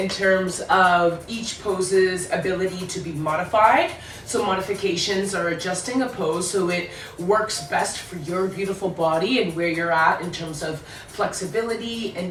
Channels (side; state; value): both; identical; correlation 1.00